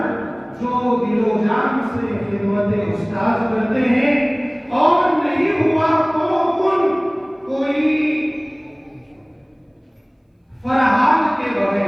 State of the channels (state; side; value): identical; both; correlation 1.00